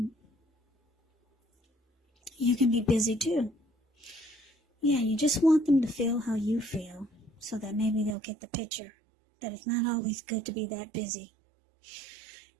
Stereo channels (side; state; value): left; drops out; at 8.2 s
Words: you can be busy too. Yeah, you just want them to feel how you feel, so that maybe they'll get the picture that it's not always good to be that busy.